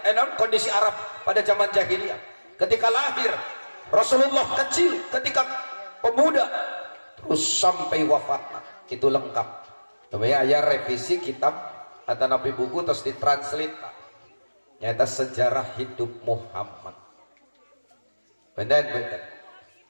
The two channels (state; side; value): inverted; both; correlation -1.00